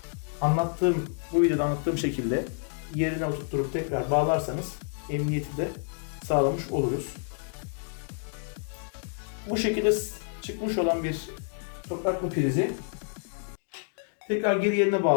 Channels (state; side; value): silent; right; digital silence